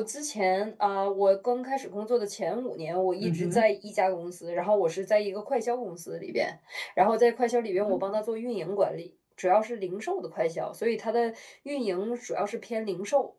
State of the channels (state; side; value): identical; both; correlation 1.00